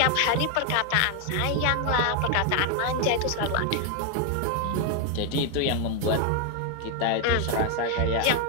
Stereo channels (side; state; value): both; different; correlation 0.01